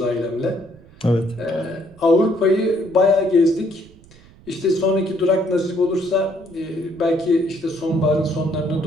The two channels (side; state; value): right; noise; rumble, 24 dB below the sound